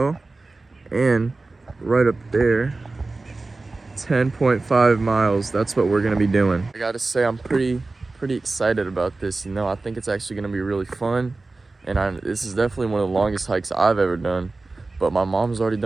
and right up there, 10.5 miles, that's what we're gonna be doing. I gotta say, I'm pretty excited about this, you know. I think it's actually gonna be really fun, and this is definitely one of the longest hikes I've ever done, but my mom's already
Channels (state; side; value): quieter; left; 3.4 dB